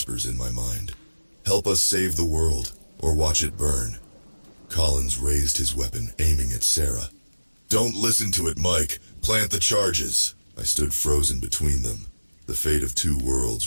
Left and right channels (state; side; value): inverted; both; correlation -1.00